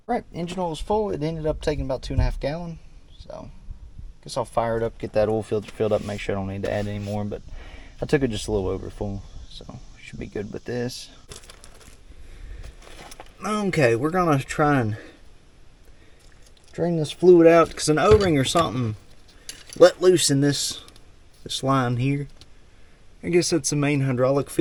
Right, engine oil was full. It ended up taking about 2.5 gallons. So, guess I'll fire it up, get that oil filter filled up, make sure I don't need to add any more. But I took it just a little over full, so should be good with this. Okay, we're gonna try and drain this fluid out because an O-ring or something let loose in this line here. I guess that's the main hydraulic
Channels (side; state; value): both; identical; correlation 1.00